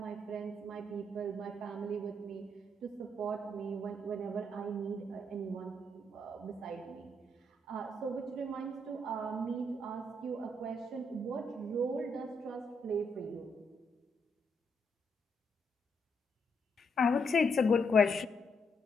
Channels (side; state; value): both; normal; correlation 0.77